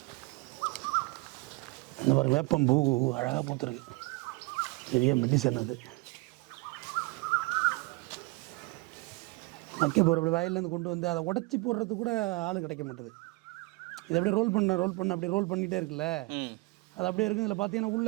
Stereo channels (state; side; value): quieter; left; 24.6 dB